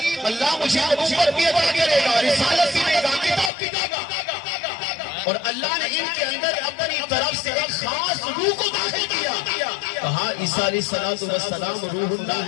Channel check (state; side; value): drops out; right; at 3.5 s